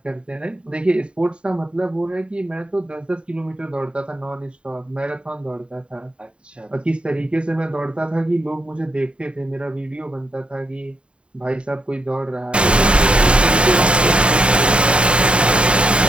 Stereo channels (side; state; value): left; late; 0.055 ms